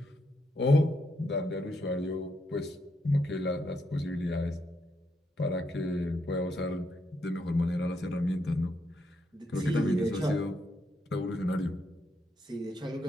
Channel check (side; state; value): both; normal; correlation 0.79